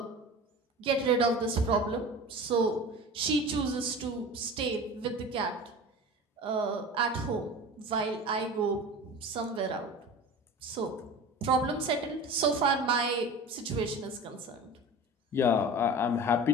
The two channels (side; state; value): both; normal; correlation 0.35